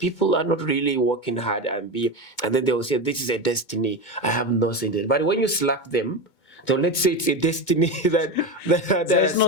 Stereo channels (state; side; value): late; right; 2.2 ms